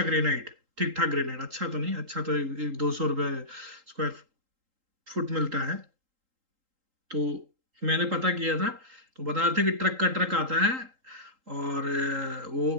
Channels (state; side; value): late; left; 3.8 ms